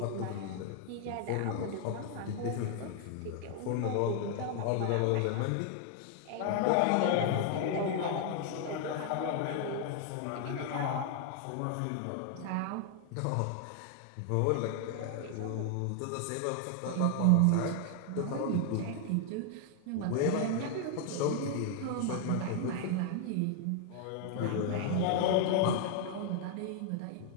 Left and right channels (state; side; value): different; both; correlation 0.00